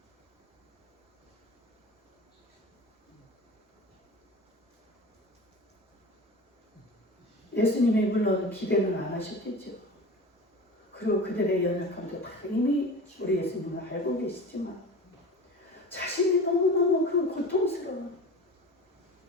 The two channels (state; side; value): normal; both; correlation 0.34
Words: 예수님이 물론 기대는 안 하셨겠죠. 그리고 그들의 연약함도 다 이미 우리 예수님은 알고 계시지만 자신이 너무너무 그 고통스러운